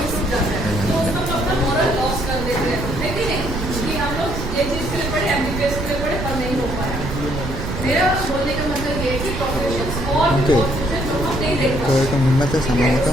जाता है, तो उसमें हम अपना मोरल लॉस कर देते हैं, लेकिन नहीं कि हम लोग ये चीज के लिए पढ़े, एमबीबीएस के लिए पढ़े, पर नहीं हो पाया। मेरा बोलने का मतलब ये है कि प्रोफेशंस और भी बहुत कुछ है जो हम नहीं देख पाते। तो हिम्मत है समय का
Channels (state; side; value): noise; right; rumble, 6 dB below the sound